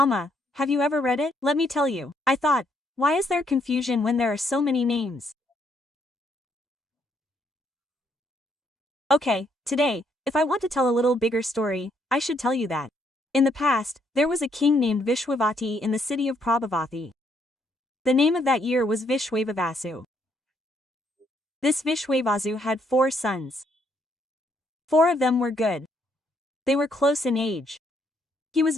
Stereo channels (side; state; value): both; normal; correlation 0.72